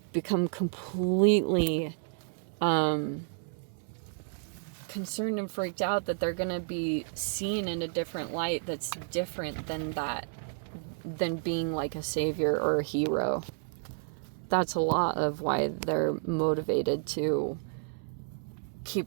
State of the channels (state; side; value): silent; left; 57 dB below the other